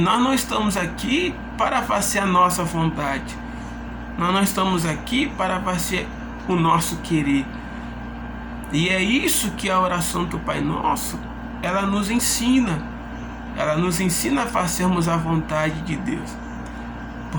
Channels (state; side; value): identical; both; correlation 1.00